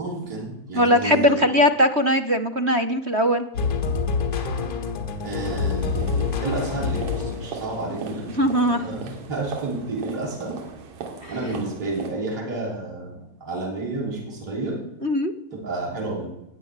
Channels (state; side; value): late; left; 3.2 ms